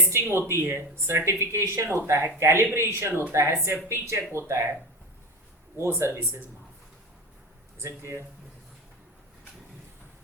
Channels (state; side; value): normal; both; correlation 0.24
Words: होती है, सर्टिफिकेशन होता है, कैलिब्रेशन होता है, सेफ्टी चेक होता है, वो सर्विसेज माफ। Is it clear?